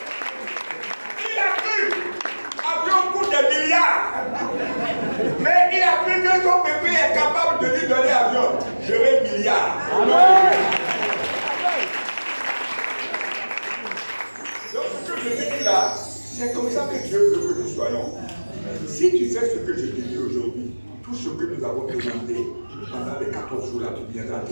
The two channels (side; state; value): both; inverted; correlation -1.00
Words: a cru. Avion coûte des milliards. Mais il a C'est comme ça que Dieu veut que nous soyons. Si tu fais ce que je te dis aujourd'hui, tout ce que nous avons demandé pendant les 14 jours là, tu viendras